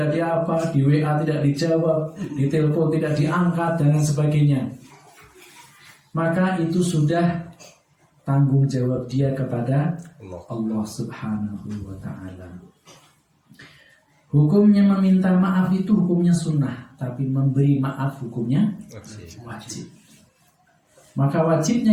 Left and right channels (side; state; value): both; identical; correlation 1.00